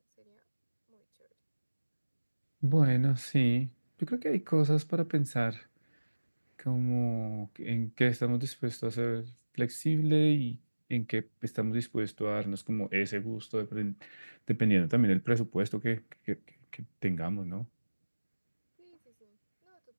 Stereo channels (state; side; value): inverted; both; correlation -1.00